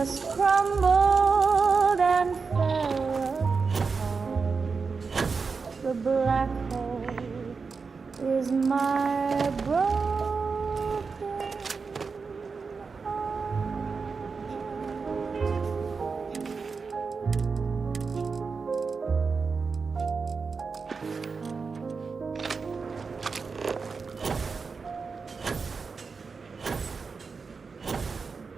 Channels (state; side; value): quieter; left; 4.9 dB